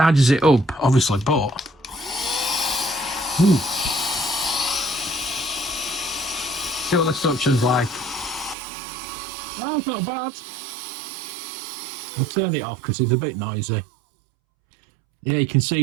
it up, obviously, but see what the suction's like. Oh, it's not bad. I'll turn it off because it's a bit noisy. Yeah, you can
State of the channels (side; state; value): left; drops out; at 8.6 s